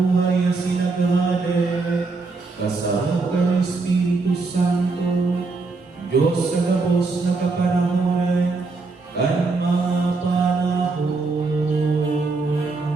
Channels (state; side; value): quieter; left; 3.9 dB